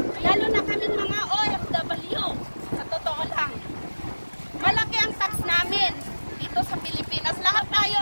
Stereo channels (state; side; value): inverted; both; correlation -1.00